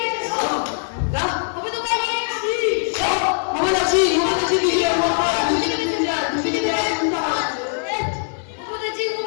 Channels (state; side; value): silent; right; 63 dB below the other